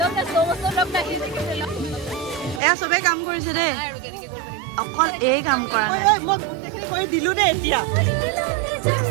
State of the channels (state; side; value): drops out; left; at 2.6 s